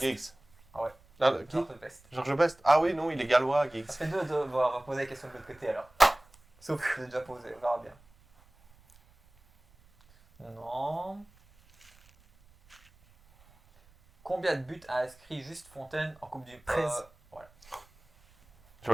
Giggs. Ah ouais. Ah, qui George Best. Georges Best. Ah oui, non, il est gallois, Giggs. Ça fait 2-2. Bon, on va poser la question de l'autre côté alors. Sauf que je l'ai déjà posé, on verra bien. Non. Combien de buts a inscrit Juste Fontaine en Coupe du 13. Voilà,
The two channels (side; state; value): right; noise; rumble, 29 dB below the sound